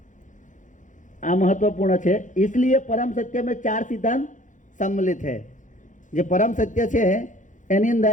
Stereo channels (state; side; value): late; right; 0.37 ms